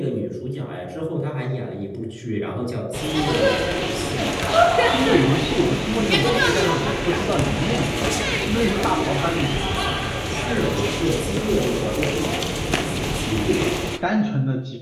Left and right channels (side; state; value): both; identical; correlation 1.00